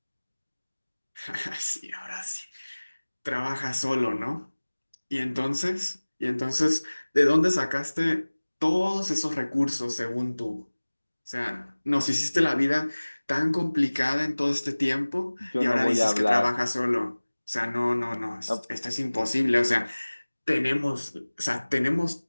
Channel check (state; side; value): inverted; both; correlation -1.00